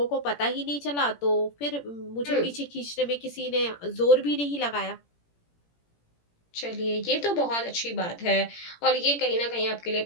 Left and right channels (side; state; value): right; late; 17 ms